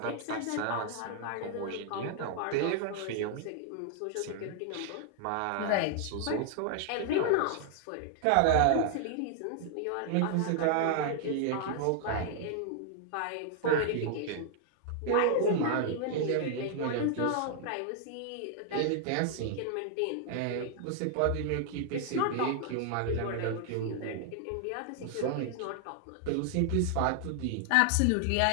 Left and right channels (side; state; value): both; different; correlation 0.00